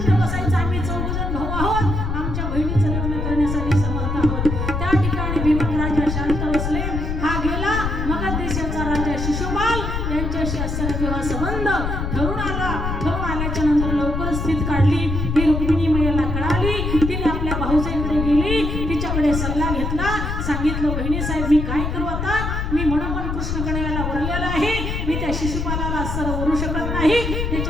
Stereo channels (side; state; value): left; noise; rumble, 2 dB below the sound